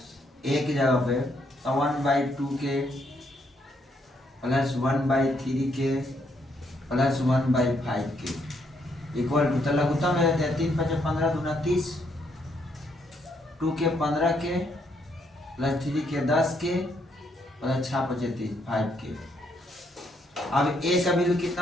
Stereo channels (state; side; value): normal; both; correlation 0.73